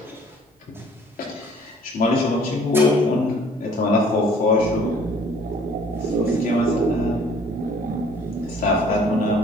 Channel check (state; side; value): normal; both; correlation 0.55